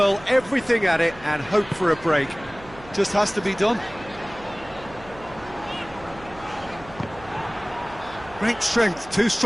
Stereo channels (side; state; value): right; noise; hum, 19 dB below the sound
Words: everything at it and hope for a break. Just has to be done. Great strength, too